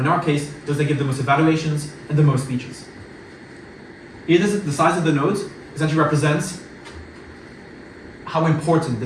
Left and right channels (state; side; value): identical; both; correlation 1.00